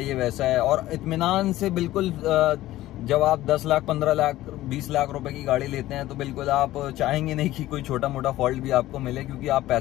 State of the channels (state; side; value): quieter; right; 15.5 dB